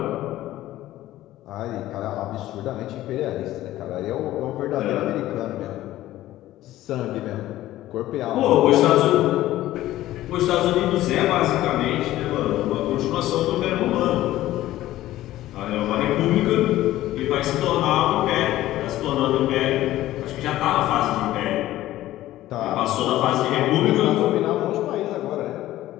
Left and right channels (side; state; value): right; quieter; 14.9 dB